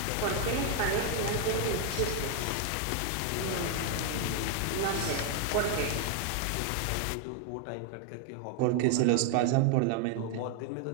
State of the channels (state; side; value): different; both; correlation 0.01